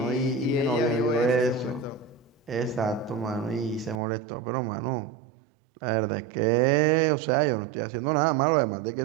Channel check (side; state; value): left; drops out; at 4.0 s